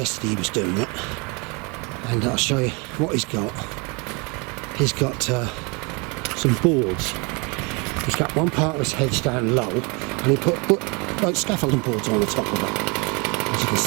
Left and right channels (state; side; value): quieter; left; 30.3 dB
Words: he was doing it, and I'll show you what he's got. He's got some boards. He's got one part of his hedge down low, and he put like scaffolding boards on the top of it. As you can